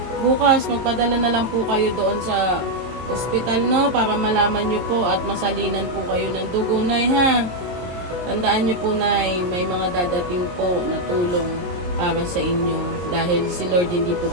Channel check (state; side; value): late; left; 22 ms